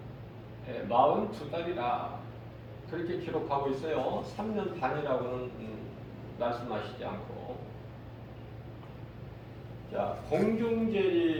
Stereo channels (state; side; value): identical; both; correlation 1.00